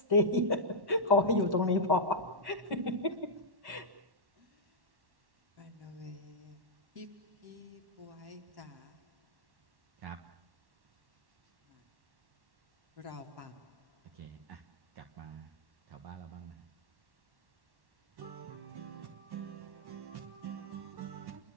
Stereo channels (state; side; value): late; left; 1.1 ms